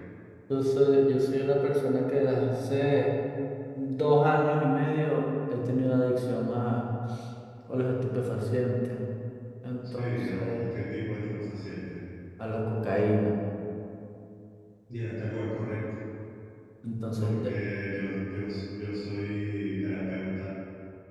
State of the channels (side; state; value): both; identical; correlation 1.00